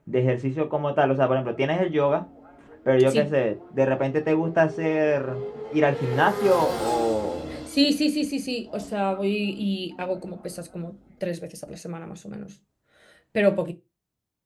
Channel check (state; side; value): identical; both; correlation 1.00